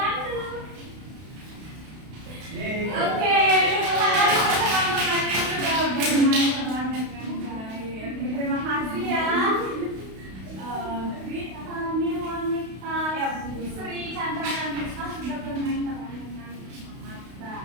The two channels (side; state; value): left; late; 32 ms